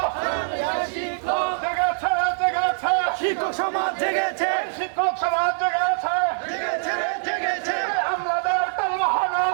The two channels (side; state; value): left; silent; digital silence